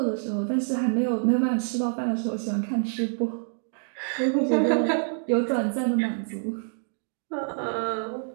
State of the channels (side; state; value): left; silent; digital silence